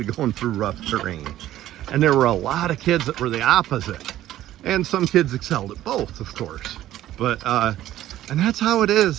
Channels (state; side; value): quieter; left; 13.6 dB